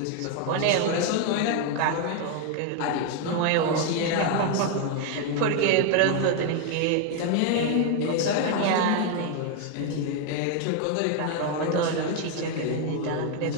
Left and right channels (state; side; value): different; both; correlation 0.01